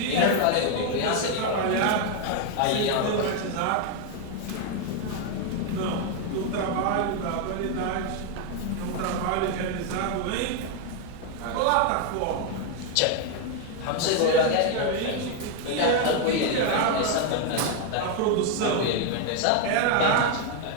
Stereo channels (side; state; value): both; different; correlation 0.01